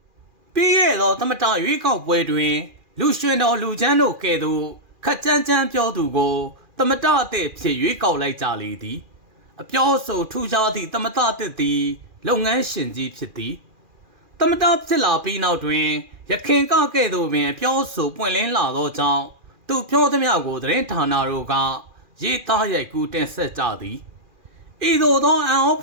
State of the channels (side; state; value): left; late; 2.4 ms